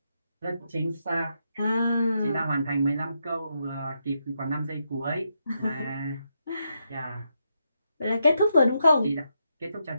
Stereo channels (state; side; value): inverted; both; correlation -0.82